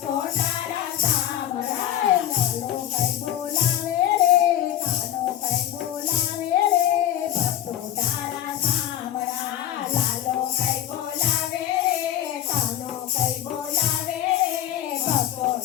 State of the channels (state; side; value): quieter; right; 11.7 dB